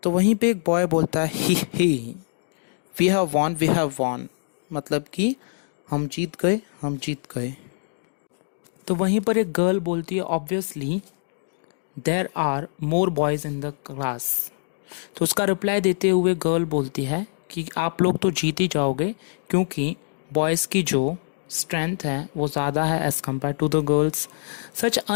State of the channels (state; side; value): silent; right; digital silence